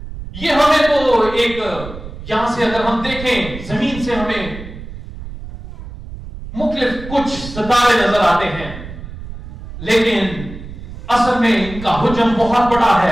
یہ ہمیں تو ایک یہاں سے اگر ہم دیکھیں زمین سے ہمیں مختلف کچھ ستارے نظر آتے ہیں، لیکن اصل میں ان کا حجم بہت بڑا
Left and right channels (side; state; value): right; noise; rumble, 12 dB below the sound